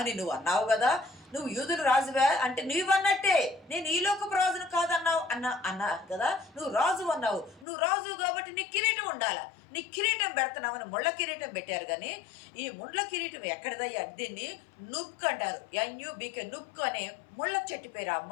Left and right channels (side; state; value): right; drops out; at 7.7 s